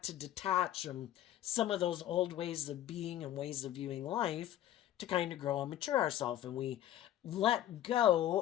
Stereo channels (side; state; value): right; quieter; 12.5 dB